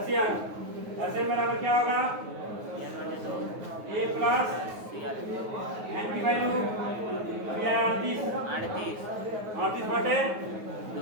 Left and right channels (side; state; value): left; late; 9.4 ms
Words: एशियन बराबर क्या होगा? ए प्लस एन की वैल्यू अभी है 38 बटे